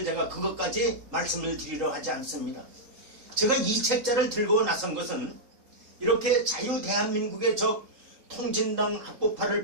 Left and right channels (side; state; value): left; late; 3.8 ms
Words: 제가 그것까지 말씀을 드리려 하지 않습니다. 제가 이 책자를 들고 나선 것은 이렇게 자유대한민국의 적 통진당 합법화를